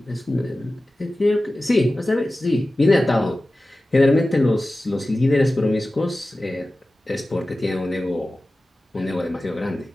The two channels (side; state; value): both; normal; correlation 0.95